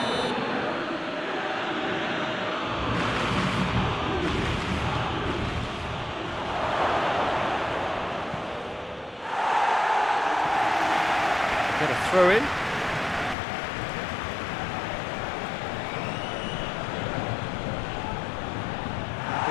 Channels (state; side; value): drops out; right; at 13.4 s